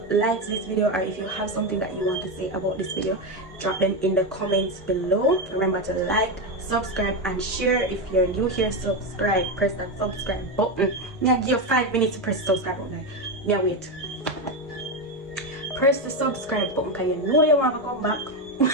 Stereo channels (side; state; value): both; normal; correlation 0.11